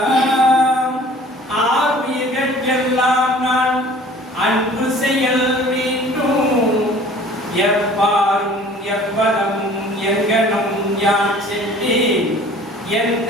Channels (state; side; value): normal; both; correlation 0.49